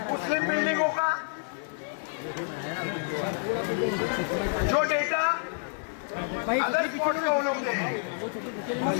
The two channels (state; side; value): silent; right; 59 dB below the other